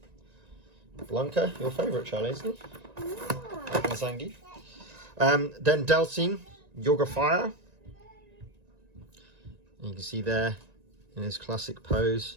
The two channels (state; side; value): late; left; 1.9 ms